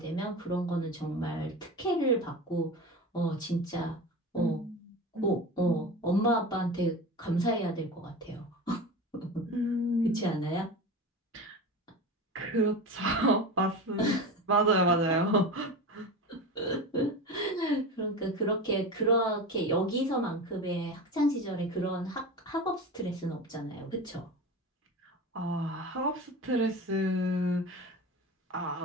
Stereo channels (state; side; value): normal; both; correlation 0.28